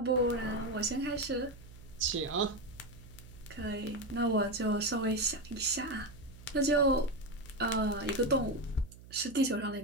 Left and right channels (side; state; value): right; noise; hum, 19 dB below the sound